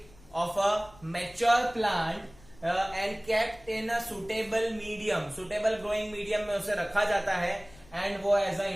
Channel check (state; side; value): noise; left; rumble, 24 dB below the sound